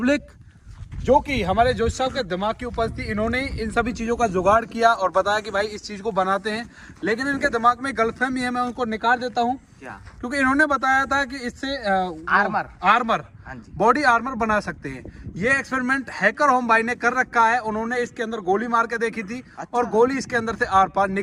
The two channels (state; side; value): identical; both; correlation 1.00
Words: जो कि हमारे जोशी साहब के दिमाग की उपज थी। इन्होंने इन सभी चीज़ों का जुगाड़ किया और बताया कि भाई इस चीज़ को बनाते हैं, लेकिन इनके दिमाग में गलतफहमी है, मैं उनको निकाल देता हूँ। क्योंकि इन्होंने बताया था कि इससे आर्मर बॉडी आर्मर बना सकते हैं। ये एक्सपेरिमेंट हैकर होम भाई ने कर रखा है। उन्होंने इसके अंदर गोली मार के देखी थी। अच्छा। और गोली इसके अंदर से आर पार